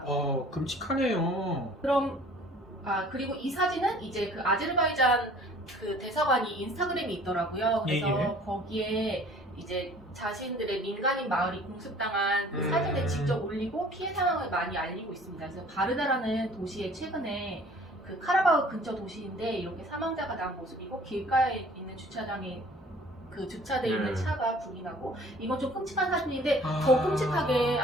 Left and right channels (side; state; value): both; normal; correlation 0.51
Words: 끔찍하네요. 그리고 이 사진은 이제 아제르바이잔 대사관이 인스타그램이 있더라고요. 그래서 거기에 이제 자신들의 민간인 마을이 공습당한 사진을 직접 올리고 피해 상황을 많이 알리고 있습니다. 그래서 바르다라는 도시에 최근에 카라바흐 근처 도시인데 이렇게 사망자가 난 모습이고 길가에 있는 주차장에 주차돼 있는 차가 불이 나고 이건 좀 끔찍한 사진인데 더 끔찍하게